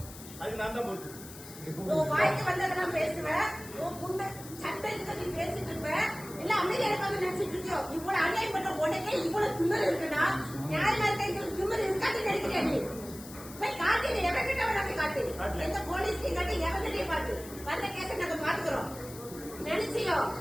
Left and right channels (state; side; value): noise; left; hiss, 15 dB below the sound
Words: அது நான் தான் பொறுப்பு. வாய்க்கு வந்ததெல்லாம் பேசுவேன். சட்டத்துக்கு நீ பேசிட்டு இருப்ப. இல்ல அமைதியா இருக்காங்க நினைச்சிட்டு இருக்கியோ. இவ்வளவு அநியாயம் பண்ண உடனே இவ்வளவு திமிரு இருக்குன்னா நியாயமா இருக்க திமிரு இருக்காது நினைக்கிறேன். நீ போய் காட்டு, எவன்கிட்ட வேணாலும் காட்டு, எந்த போலீஸ்லையும் காட்டு, எவன்கிட்டயும் காட்டு. வந்த கேஸை நாங்க பாத்துக்கிறோம். நினைச்சியோ